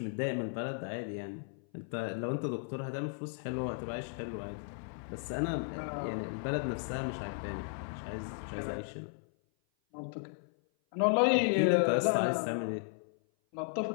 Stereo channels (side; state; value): right; silent; 55 dB below the other